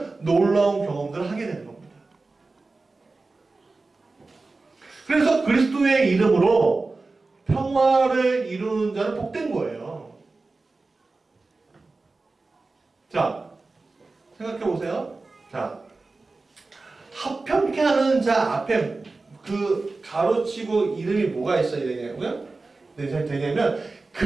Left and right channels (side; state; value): left; quieter; 3.6 dB